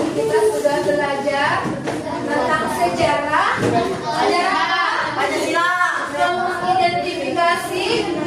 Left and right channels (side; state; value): both; identical; correlation 1.00